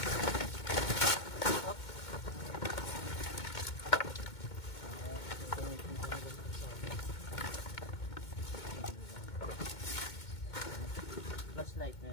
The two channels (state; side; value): late; right; 2.2 ms